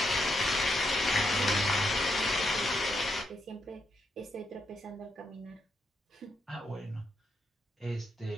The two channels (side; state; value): both; normal; correlation 0.80